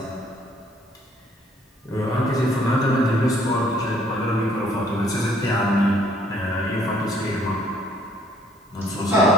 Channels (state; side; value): normal; both; correlation 0.63